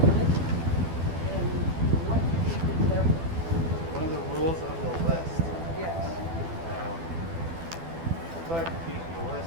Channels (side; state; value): left; late; 12 ms